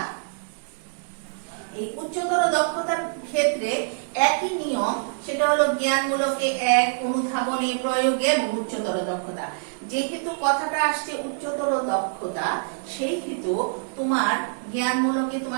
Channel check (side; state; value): left; silent; digital silence